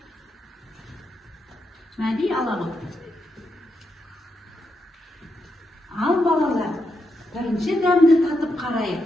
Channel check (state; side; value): normal; both; correlation 0.83